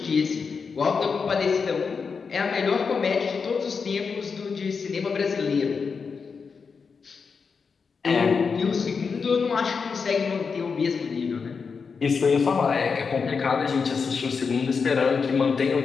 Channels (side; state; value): right; quieter; 5.4 dB